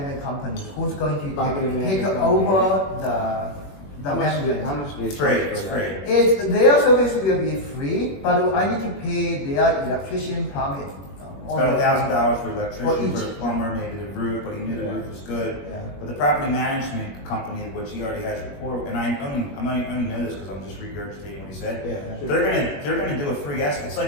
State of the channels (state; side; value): late; right; 21 ms